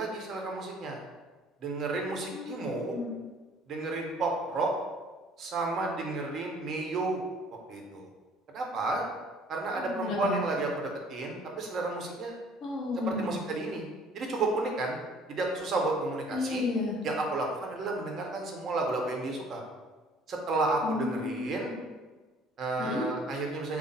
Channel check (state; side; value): normal; both; correlation 0.54